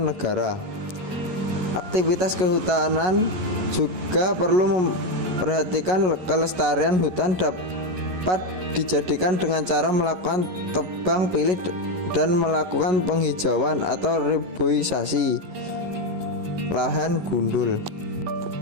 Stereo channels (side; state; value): left; late; 11 ms